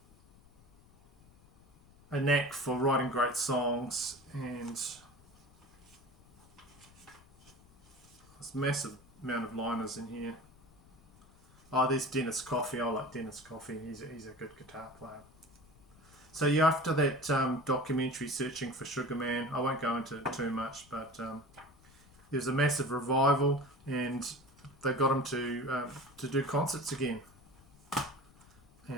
knack for writing great songs, and this massive amount of liners in here. Oh, there's Dennis Coffey. I like Dennis Coffey. He's a good guitar player. So yeah, after that documentary, Searching for Sugar Man, I won't go into it too much, but there's a massive revival, and they got him to do concerts again.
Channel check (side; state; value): left; noise; rumble, 26 dB below the sound